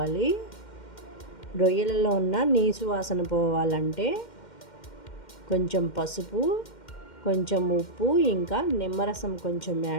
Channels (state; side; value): late; right; 2.1 ms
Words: రొయ్యలలో ఉన్న నీసు వాసన పోవాలంటే కొంచెం పసుపు, కొంచెం ఉప్పు, ఇంకా నిమ్మరసం కొంచెం